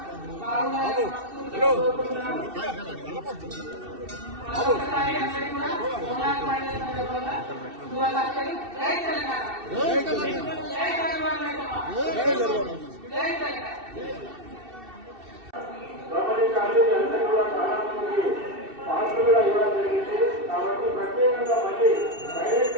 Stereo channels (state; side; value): late; left; 2.7 ms